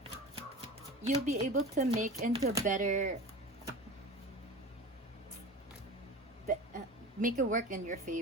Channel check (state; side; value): normal; both; correlation 0.32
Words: you'll be able to make into better make it work in your